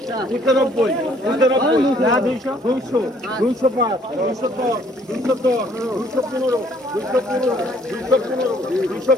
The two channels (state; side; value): normal; both; correlation 0.62